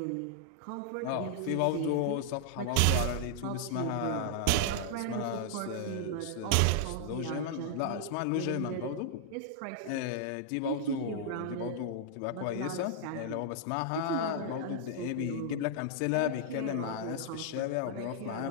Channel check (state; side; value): different; both; correlation -0.01